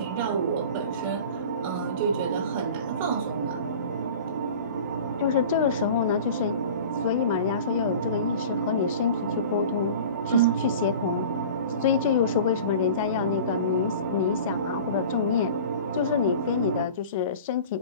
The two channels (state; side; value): inverted; both; correlation -0.40